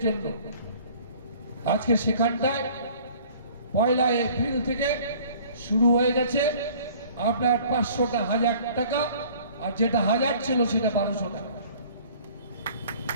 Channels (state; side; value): inverted; both; correlation -0.51